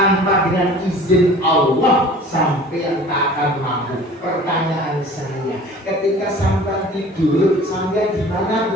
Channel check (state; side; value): normal; both; correlation 0.45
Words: dengan izin Allah sampai yang tak akan mampu. Pertanyaan saya, ketika sampai tidur, sampai di mana